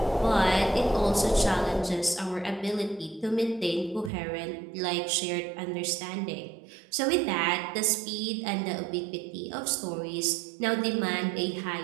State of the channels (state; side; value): drops out; left; at 4.1 s